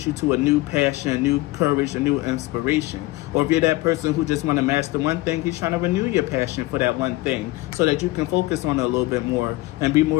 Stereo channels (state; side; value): quieter; right; 19.2 dB